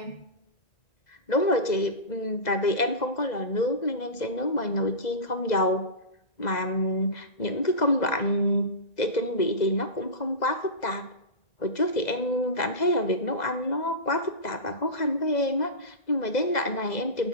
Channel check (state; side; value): late; right; 2.0 ms